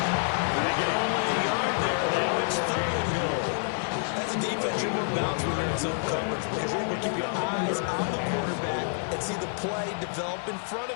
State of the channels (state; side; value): silent; right; digital silence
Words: They get only a yard there. Now it's third and goal. As a defense, you want bounce when you're in zone coverage because you're able to keep your eyes on the quarterback and see the play develop in front